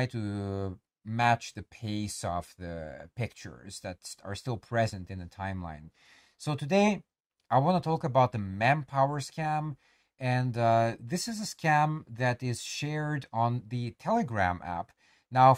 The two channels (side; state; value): both; identical; correlation 1.00